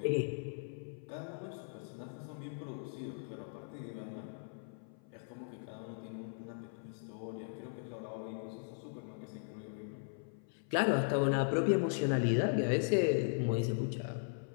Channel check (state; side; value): silent; right; 52 dB below the other